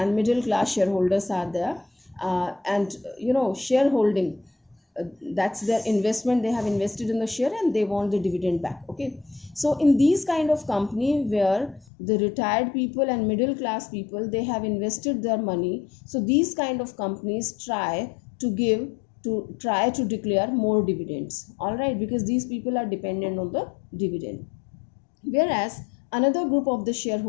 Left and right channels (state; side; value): drops out; right; at 11.9 s